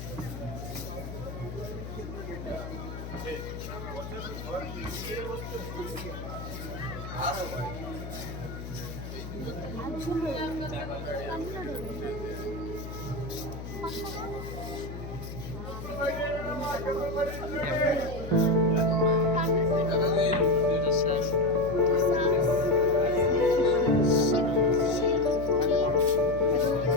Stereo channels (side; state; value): left; noise; hum, 9 dB below the sound